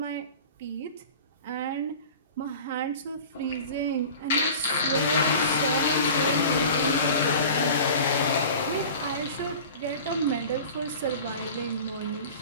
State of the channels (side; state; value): both; inverted; correlation -0.39